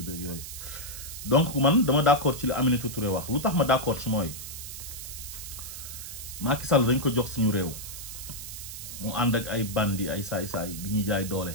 beeg yooyu. Donc man dama d'accord ci li Aminata Touré wax lu tax ma d'accord ci mooy Macky Sall dañ ko jox suñu réew mu ànd ak ay bandi ay saay-saay di ñuy jaay doole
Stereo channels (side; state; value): right; noise; hiss, 10 dB below the sound